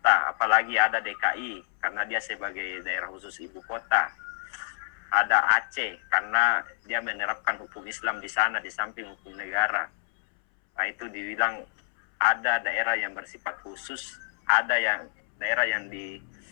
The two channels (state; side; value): silent; right; 60 dB below the other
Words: apalagi ada DKI karena dia sebagai daerah khusus ibu kota. Ada Aceh karena dia menerapkan hukum Islam di sana di samping hukum negara. Nah, itu dibilang ada daerah yang bersifat khusus, ada yang daerah yang